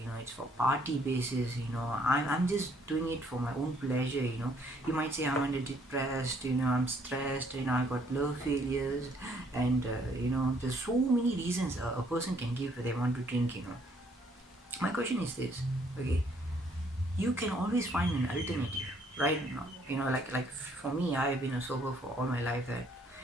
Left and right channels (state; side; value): normal; both; correlation 0.65